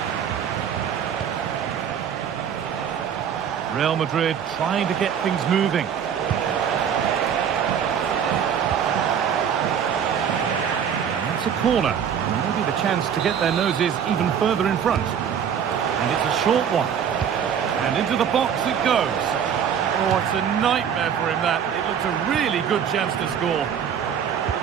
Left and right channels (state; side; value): quieter; left; 8.1 dB